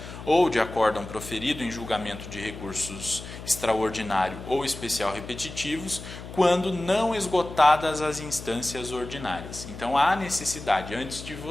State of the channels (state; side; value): noise; left; hum, 12 dB below the sound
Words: ou de acórdão proferido em julgamento de recursos extraordinário ou especial repetitivos, quando não esgotadas as instâncias ordinárias. Então, há necessidade, antes de